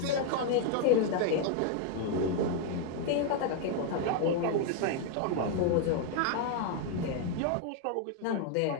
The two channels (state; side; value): different; both; correlation 0.00